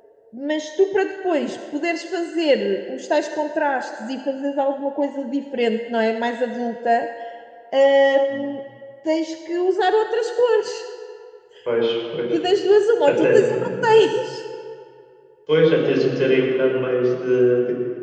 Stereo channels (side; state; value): both; identical; correlation 1.00